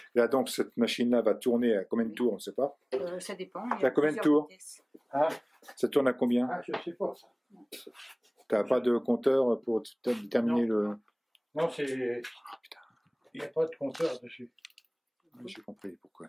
Là, donc, cette machine-là va tourner à combien de tours, on ne sait pas. Ça dépend. Ça a combien de tours? Ah, Ça tourne à combien? je sais pas ça. Tu n'as pas de compteur pour déterminer le... Non, il n'y a pas de compteur dessus. J'ai compris pourquoi.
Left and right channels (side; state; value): both; identical; correlation 1.00